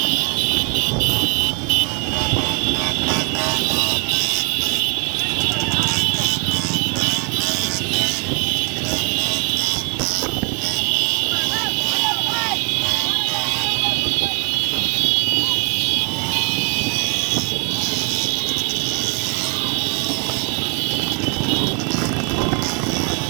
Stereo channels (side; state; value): left; quieter; 35.6 dB